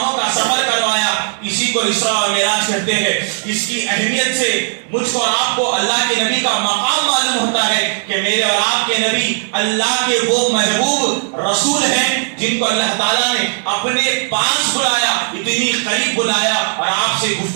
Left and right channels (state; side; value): silent; left; 66 dB below the other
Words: کا سفر کروایا، اسی کو اسراء اور معراج کہتے ہیں۔ اس کی اہمیت سے مجھ کو اور آپ کو اللہ کے نبی کا مقام معلوم ہوتا ہے کہ میرے اور آپ کے نبی اللہ کے وہ محبوب رسول ہیں جن کو اللہ تعالیٰ نے اپنے پاس بلایا، اتنی قریب بلایا اور آپ سے